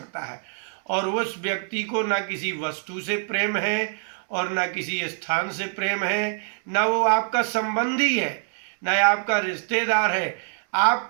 है और उस व्यक्ति को ना किसी वस्तु से प्रेम है और ना किसी स्थान से प्रेम है, ना वो आपका संबंधी है, ना आपका रिश्तेदार है,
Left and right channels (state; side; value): silent; left; 59 dB below the other